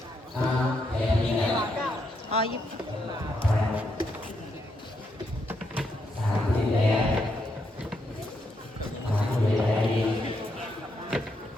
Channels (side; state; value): both; normal; correlation 0.79